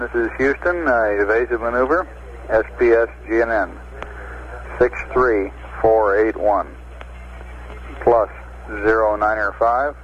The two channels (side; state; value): both; identical; correlation 1.00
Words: this is Houston, evasive maneuver, SPS GNN, 63481, plus 095,